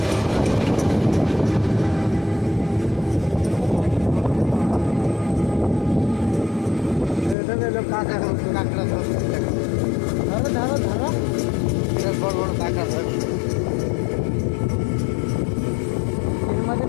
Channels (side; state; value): right; drops out; at 7.4 s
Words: কাঁকড়া ধরছে, ধরো ধরো ধরো, বড় বড় কাঁকড়া ধরছে। এর মধ্যে